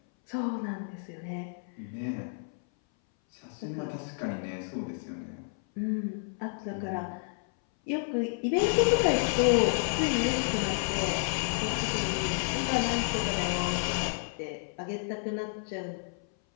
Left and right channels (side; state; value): right; silent; 57 dB below the other